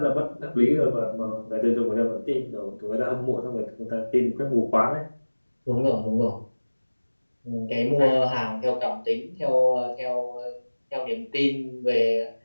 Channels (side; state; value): both; inverted; correlation -1.00